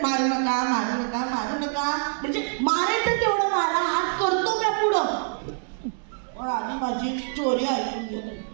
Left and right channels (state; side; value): silent; left; 61 dB below the other